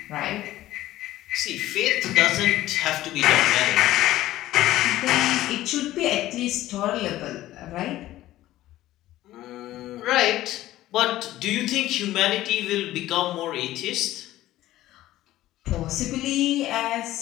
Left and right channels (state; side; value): quieter; right; 15.1 dB